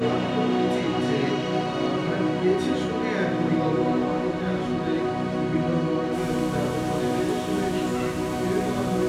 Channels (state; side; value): identical; both; correlation 1.00